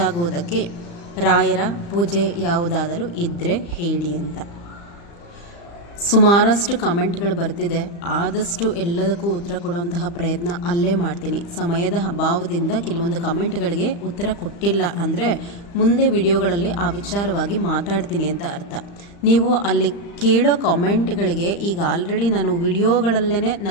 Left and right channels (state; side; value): late; right; 35 ms